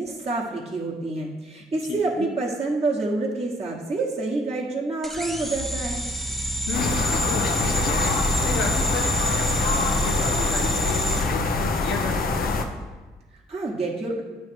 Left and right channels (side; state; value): both; normal; correlation 0.60